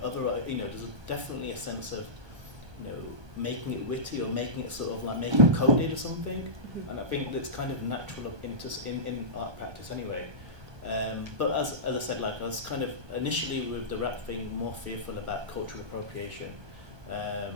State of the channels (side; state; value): left; late; 1.2 ms